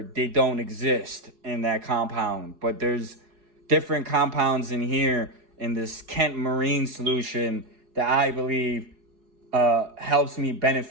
they don't exist in that compound. But there's different compounds in here in this Kent Marine solution that I believe helps me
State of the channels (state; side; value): late; left; 4.7 ms